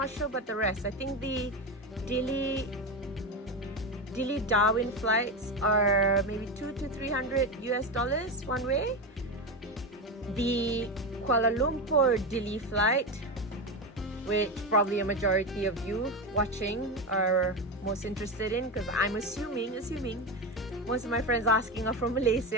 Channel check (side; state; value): both; normal; correlation 0.17